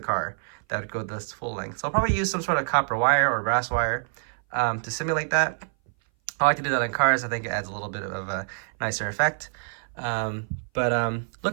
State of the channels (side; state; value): left; silent; 58 dB below the other